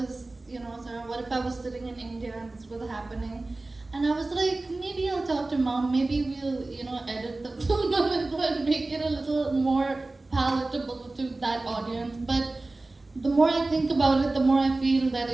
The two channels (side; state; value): left; quieter; 3.1 dB